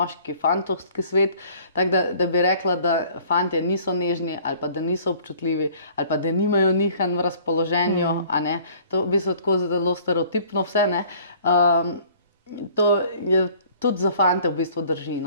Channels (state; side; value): inverted; both; correlation -0.53